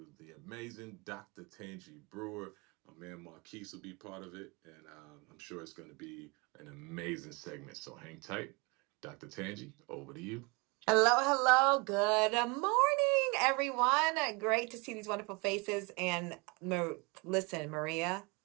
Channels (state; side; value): quieter; left; 28.7 dB